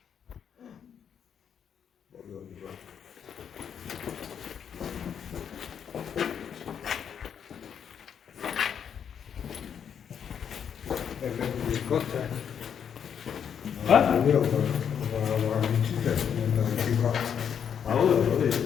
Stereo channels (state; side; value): quieter; right; 8.0 dB